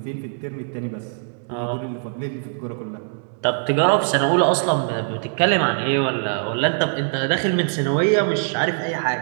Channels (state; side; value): silent; left; digital silence